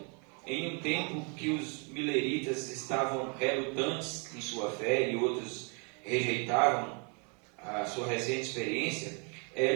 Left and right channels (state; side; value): quieter; left; 36.0 dB